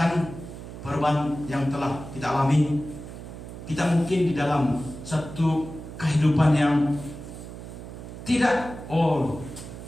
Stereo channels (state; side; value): noise; right; hum, 12 dB below the sound